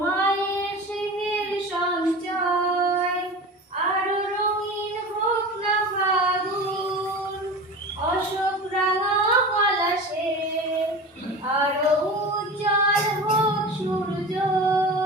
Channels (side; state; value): both; normal; correlation 0.32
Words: মায়ের স্নেহের সঞ্চয়। আরো রঙিন হোক না ফাগুন অশোক রাঙা পলাশে, আরো উজ্জ্বল হোক সূর্য,